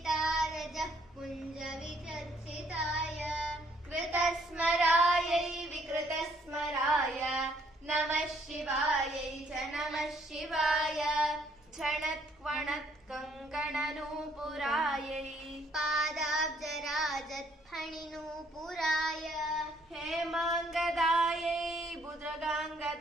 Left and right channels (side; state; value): both; normal; correlation 0.66